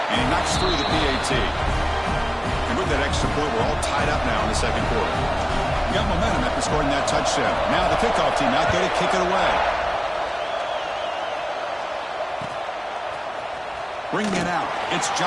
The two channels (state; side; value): identical; both; correlation 1.00